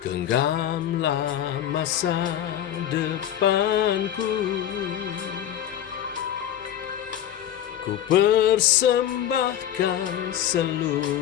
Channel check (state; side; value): quieter; right; 10.9 dB